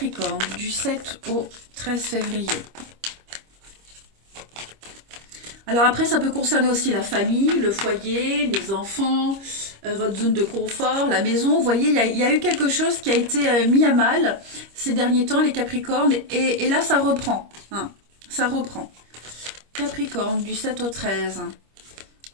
du 7 au 13 février. Alors après, ça peut concerner aussi la famille, le foyer, les enfants, votre zone de confort, la maison. Vous voyez, il y a eu quelque chose qui a été mis à mal ces derniers temps, les Capricornes. Et là, ça reprend. Hein, ça reprend. Capricorne, du 7 au 13.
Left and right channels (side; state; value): left; late; 25 ms